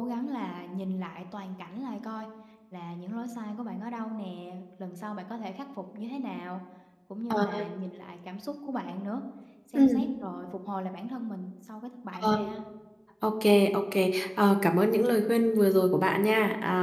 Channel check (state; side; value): identical; both; correlation 1.00